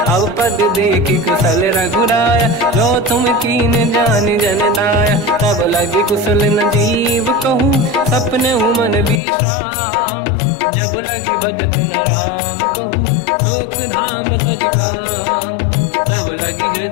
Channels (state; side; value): drops out; right; at 9.2 s